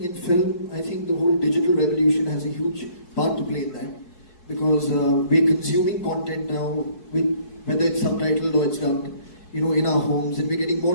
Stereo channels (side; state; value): right; late; 4.6 ms